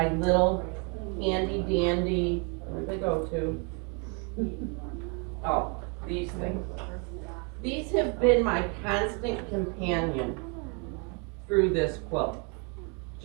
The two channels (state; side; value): quieter; left; 35.4 dB